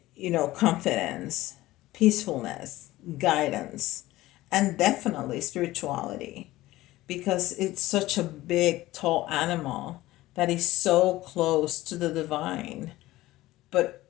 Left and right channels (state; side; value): quieter; right; 17.2 dB